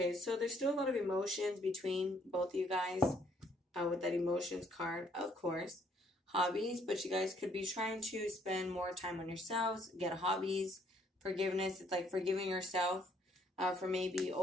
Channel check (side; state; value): both; normal; correlation 0.66